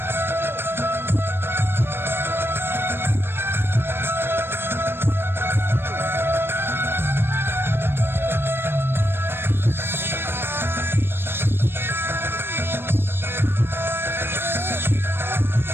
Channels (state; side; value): late; left; 0.11 ms